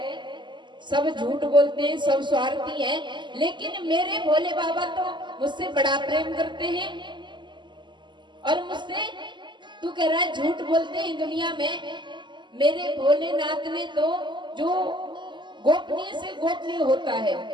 सब झूठ बोलते हैं, सब स्वार्थी हैं, लेकिन मेरे भोले बाबा तो मुझसे बड़ा प्रेम करते हैं। और मुझसे तू कह रहा है झूठ बोलते हैं दुनिया में। मेरे भोलेनाथ ने तो जो गोपनीय से गोपनीय होता है,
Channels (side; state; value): left; late; 0.22 ms